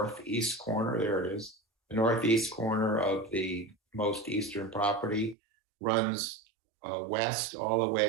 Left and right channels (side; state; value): left; drops out; at 5.4 s